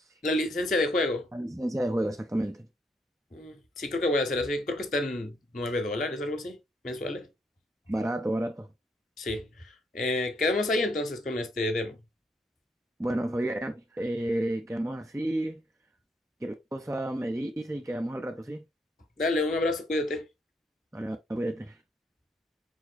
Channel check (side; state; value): both; normal; correlation 0.74